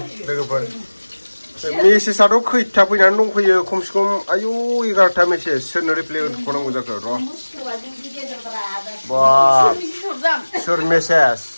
लोगोफोर मेसेजआथ' खैथा फैनानै दंफैयो खमसे खम आयु 11टा मेसेज सोरनो रिप्लाय होनांगौ जाखो र' बा सोर मेसेज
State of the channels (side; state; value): both; inverted; correlation -1.00